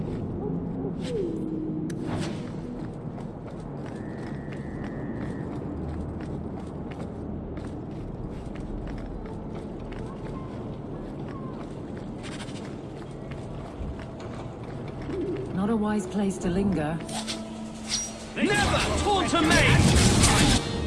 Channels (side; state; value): both; identical; correlation 1.00